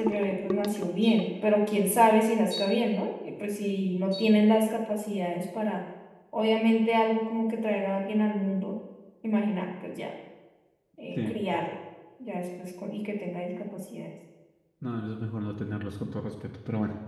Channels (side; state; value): both; identical; correlation 1.00